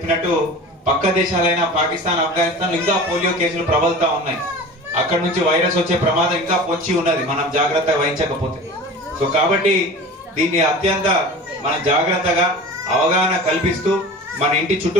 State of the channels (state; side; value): normal; both; correlation 0.37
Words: పక్క దేశాలైన పాకిస్తాన్, ఆఫ్ఘనిస్తాన్ ఇంకా పోలియో కేసులు ప్రబలుతా ఉన్నాయి. అక్కడ నుంచి వైరస్ వచ్చే ప్రమాదం ఇంకా పొంచి ఉన్నది మనం జాగ్రత్త వహించకపోతే. సో కాబట్టి దీన్ని అత్యంత మన జాగ్రత్తగా అవగాహన కల్పిస్తూ మన ఇంటి